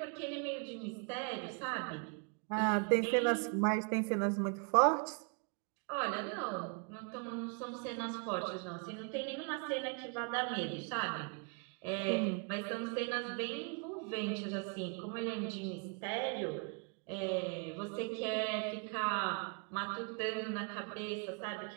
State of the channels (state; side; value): quieter; left; 36.4 dB